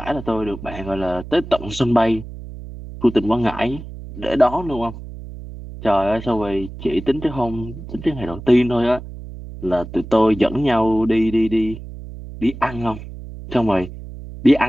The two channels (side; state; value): right; noise; hum, 12 dB below the sound